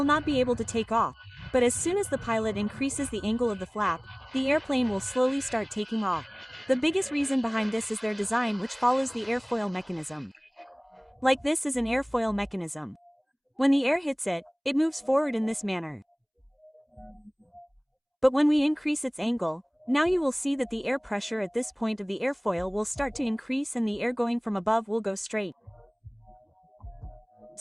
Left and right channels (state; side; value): identical; both; correlation 1.00